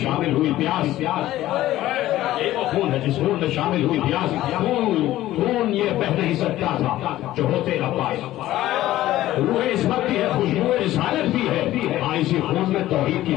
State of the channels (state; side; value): quieter; right; 14.8 dB